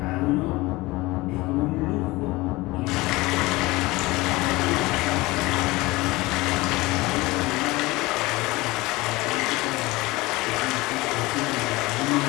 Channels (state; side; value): quieter; right; 21.1 dB